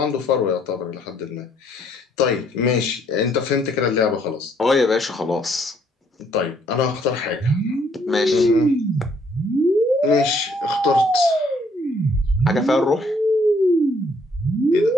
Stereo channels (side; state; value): both; normal; correlation 0.66